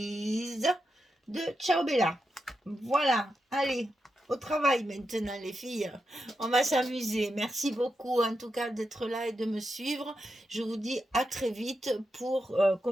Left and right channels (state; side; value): normal; both; correlation 0.87